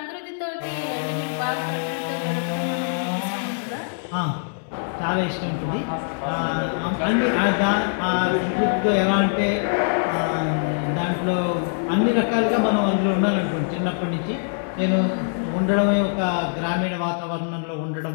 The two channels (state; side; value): silent; right; digital silence